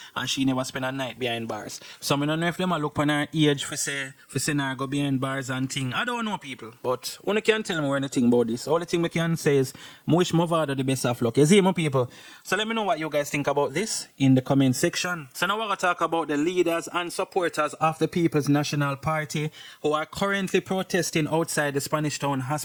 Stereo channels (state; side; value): identical; both; correlation 1.00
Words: And she never spend a night behind bars. So I don't know if them look on her age for say her go behind bars and thing. I don't know, people. But one can't tell me anything about this. All the thing we can say is I wish Mavado the best of luck. You see, my people. So let me know what you guys think about this in the comment section. So now we're going to talk about the leaders and supporters of the People's National Party who are currently protesting outside the Spanish Town